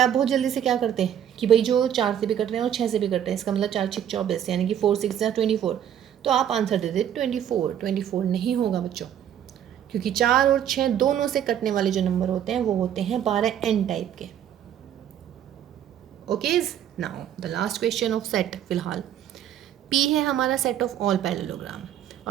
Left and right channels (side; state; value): left; quieter; 9.9 dB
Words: बहुत जल्दी से क्या करते हैं कि भाई जो 4 से भी कट रहे हैं और 6 से भी कट रहे हैं, इसका मतलब 4 6 24, यानी कि 4 6 या 24, तो आप आंसर दे दे 24। 24 नहीं होगा बच्चों, क्योंकि 4 और 6 दोनों से कटने वाले जो नंबर होते हैं वो होते हैं 12n टाइप के। Okay, now the last question of set. फिलहाल P है हमारा सेट ऑफ ऑल पैरेललोग्राम,